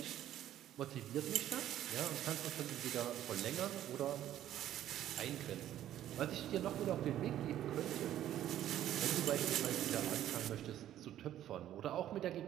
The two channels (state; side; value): quieter; left; 12.1 dB